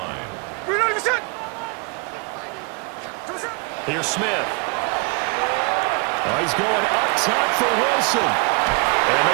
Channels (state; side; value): quieter; left; 32.9 dB